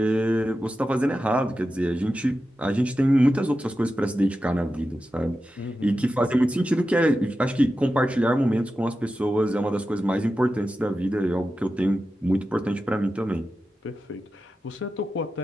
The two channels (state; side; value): normal; both; correlation 0.92